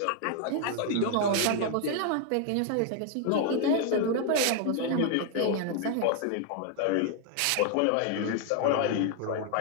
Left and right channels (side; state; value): both; different; correlation 0.00